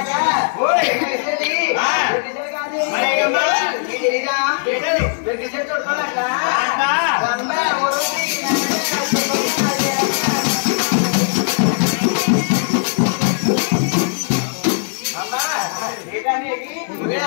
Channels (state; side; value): silent; right; 61 dB below the other